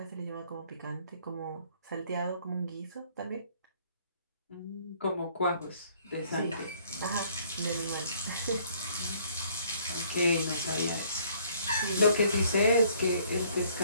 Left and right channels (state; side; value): inverted; both; correlation -0.62